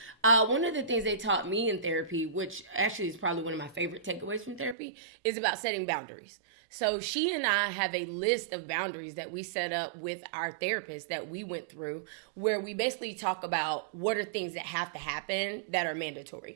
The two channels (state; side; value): drops out; left; at 4.8 s